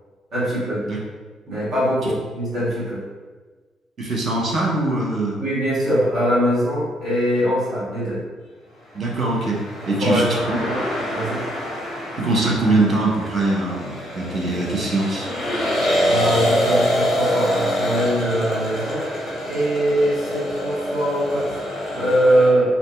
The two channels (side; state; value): both; normal; correlation 0.73